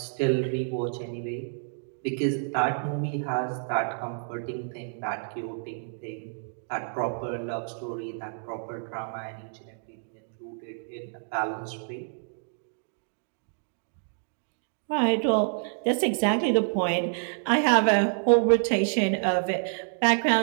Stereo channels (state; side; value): silent; left; digital silence